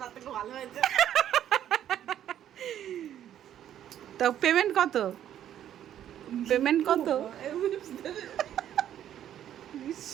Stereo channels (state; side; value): quieter; left; 10.8 dB